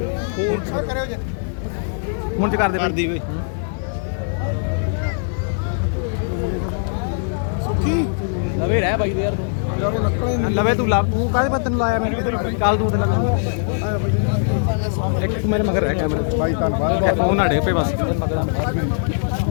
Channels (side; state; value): right; silent; 58 dB below the other